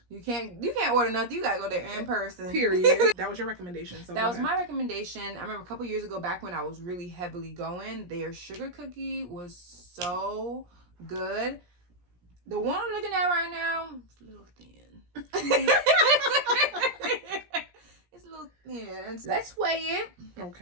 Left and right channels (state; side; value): late; left; 17 ms